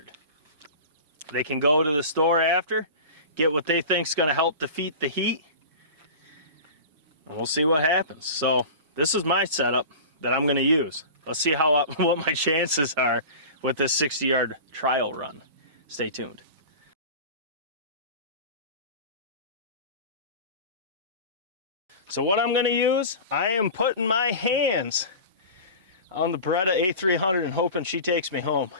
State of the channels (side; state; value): both; inverted; correlation -0.34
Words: They can go to the store after, get what they think is going to help defeat the heat, and we'll see what happens. So this is my setup that I'm going to use. Let's see what my chances are with this 60-yard trial run. Stay tuned. So what I'm going to use, I am putting my hands on the Beretta A300 and hoping she takes me home.